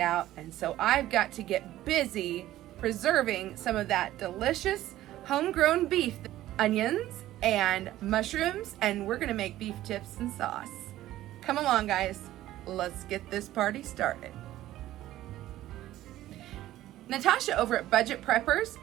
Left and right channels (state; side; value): quieter; left; 14.4 dB